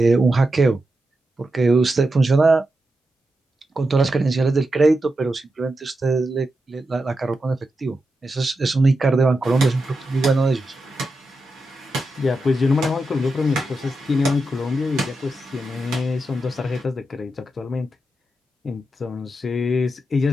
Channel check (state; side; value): normal; both; correlation 0.88